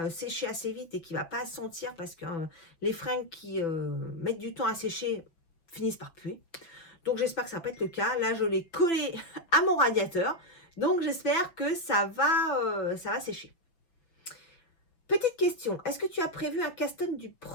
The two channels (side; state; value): right; late; 6.0 ms